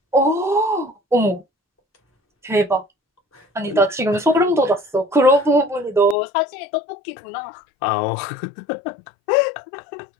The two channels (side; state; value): right; drops out; at 6.2 s